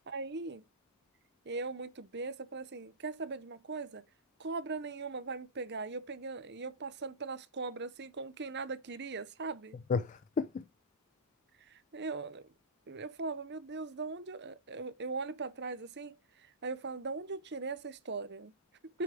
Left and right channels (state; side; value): normal; both; correlation -0.18